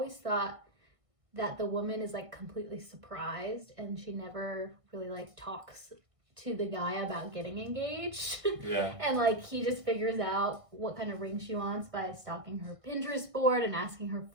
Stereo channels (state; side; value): late; left; 1.6 ms